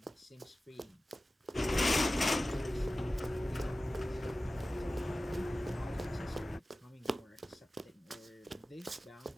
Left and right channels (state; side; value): normal; both; correlation 0.95